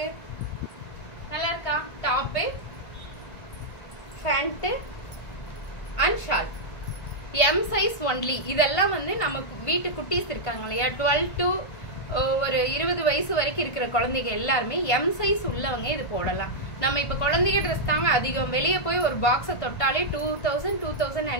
நல்லா இருக்கா? Top, pant and shawl M size only. இதெல்லாம் வந்து நமக்கு வீட்டு குட்டீஸ் இருக்காங்க இல்லையா, 12 to ஒரு 20 வயசு வரைக்கும் இருக்கிற குழந்தைங்க எல்லாருமே எம் சைஸ் உள்ளவங்க இது போடலாம். நம்ம இப்ப குழந்தைங்க ட்ரெஸ் தாங்க அதிகம். வெளியே போய் ஒரு பாக்ஸை தொட்டாலே 2000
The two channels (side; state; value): right; late; 1.5 ms